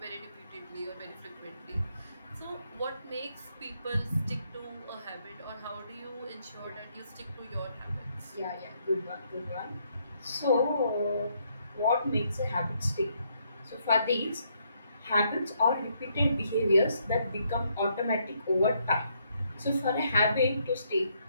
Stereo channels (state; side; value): inverted; both; correlation -0.73